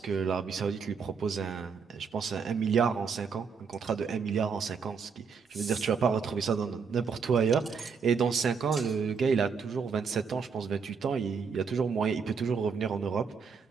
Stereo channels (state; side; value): quieter; left; 5.8 dB